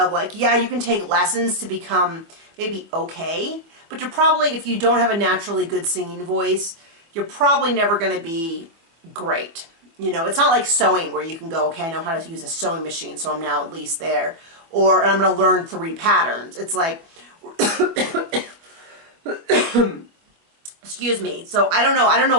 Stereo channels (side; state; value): left; late; 24 ms